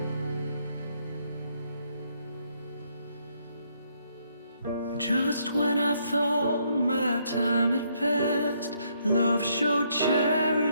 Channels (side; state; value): both; inverted; correlation -0.72